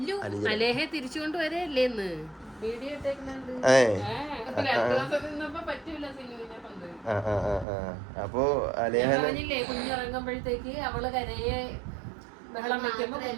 തിരിച്ചുകൊണ്ട് വരല്ലേന്ന് അപ്പോ കുഞ്ഞിറങ്ങുമ്പോഴത്തേക്ക് അവള് കരയെ ബഹളം വെക്കുമ്പോ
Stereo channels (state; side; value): drops out; left; at 7.7 s